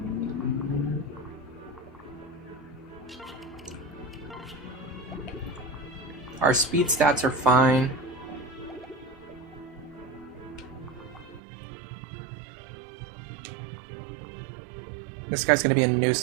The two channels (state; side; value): drops out; left; at 11.4 s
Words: Our speed stats are fine. This guy's gonna be a